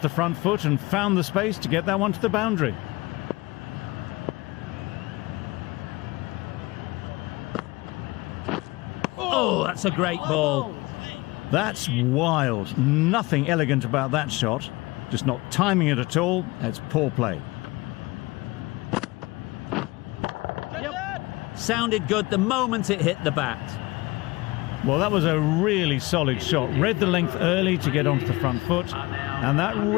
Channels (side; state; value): right; quieter; 22.2 dB